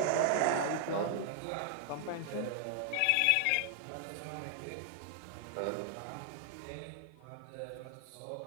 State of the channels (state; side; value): different; both; correlation -0.01